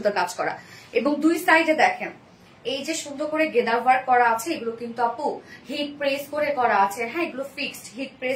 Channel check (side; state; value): both; identical; correlation 1.00